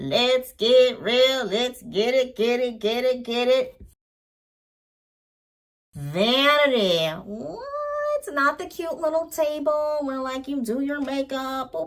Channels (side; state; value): both; identical; correlation 1.00